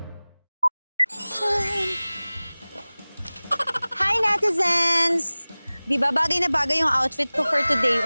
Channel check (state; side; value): inverted; both; correlation -0.99